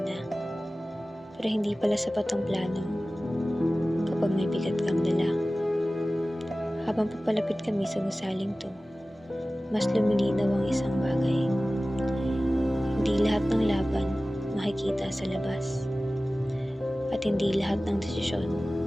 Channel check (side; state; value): both; normal; correlation 0.97